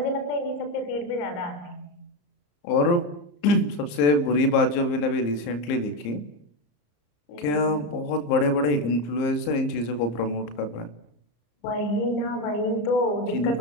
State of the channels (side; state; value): right; late; 34 ms